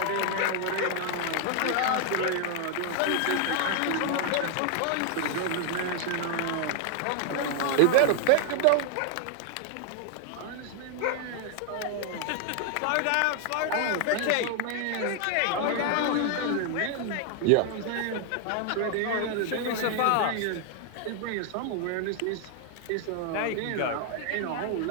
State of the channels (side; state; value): both; different; correlation 0.00